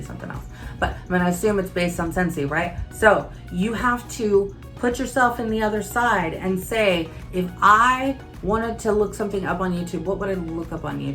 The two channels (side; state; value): both; identical; correlation 1.00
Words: something else. But I'm gonna assume it's based on Scentsy, right? So you have to put yourself in the other side and say, if I wanted to look something up on YouTube, what would I look up on